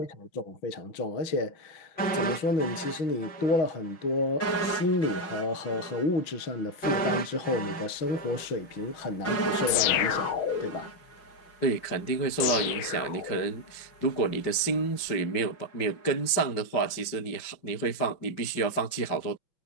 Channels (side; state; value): right; late; 6.3 ms